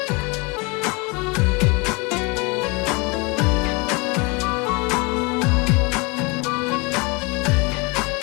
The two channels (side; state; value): right; quieter; 28.0 dB